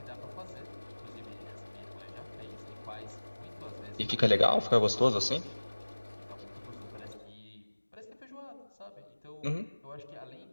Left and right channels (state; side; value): inverted; both; correlation -1.00